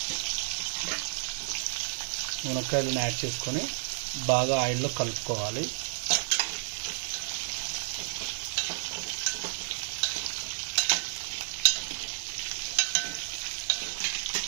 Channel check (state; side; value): silent; left; digital silence